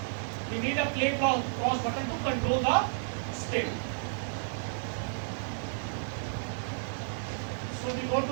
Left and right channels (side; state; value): left; silent; digital silence